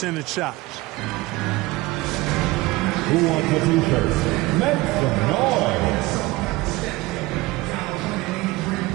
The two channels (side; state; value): left; quieter; 20.4 dB